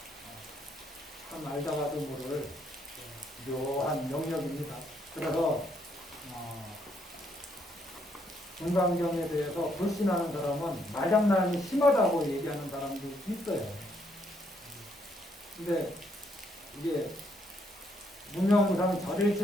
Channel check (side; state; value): both; normal; correlation 0.72